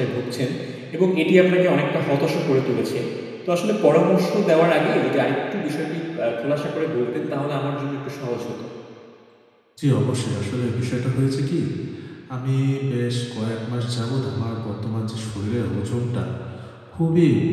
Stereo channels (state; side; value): identical; both; correlation 1.00